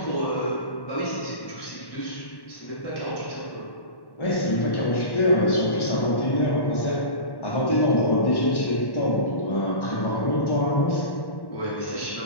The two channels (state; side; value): late; right; 1.1 ms